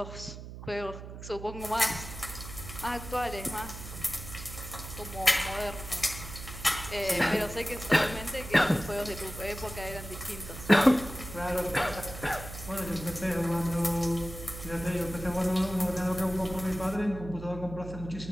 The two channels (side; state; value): right; noise; hum, 11 dB below the sound